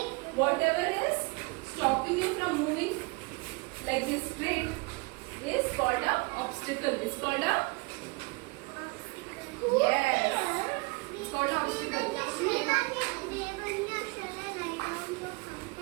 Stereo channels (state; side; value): quieter; left; 28.0 dB